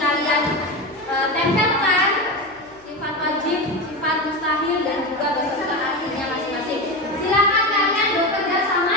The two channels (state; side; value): noise; left; hum, 28 dB below the sound